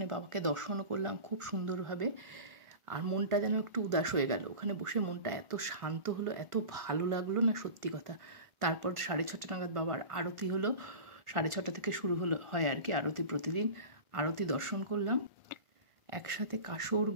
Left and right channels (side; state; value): left; late; 1.5 ms